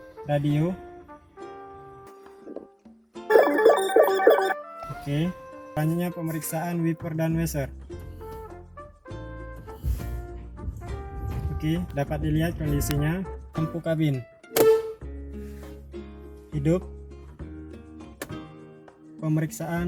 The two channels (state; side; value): identical; both; correlation 1.00